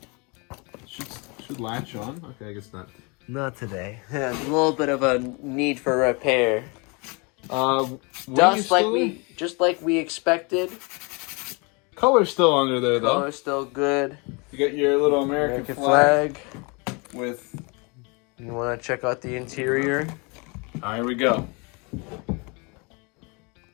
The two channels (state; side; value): quieter; right; 30.4 dB